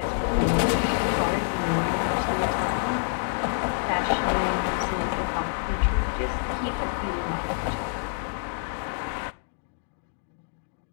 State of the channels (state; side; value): silent; right; 60 dB below the other